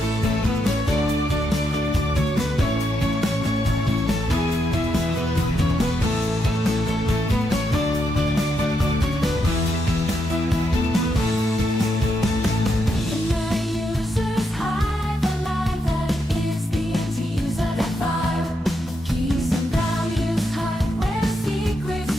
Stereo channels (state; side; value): normal; both; correlation 0.81